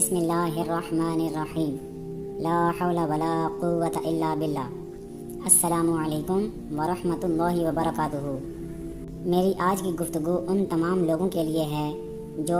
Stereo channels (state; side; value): identical; both; correlation 1.00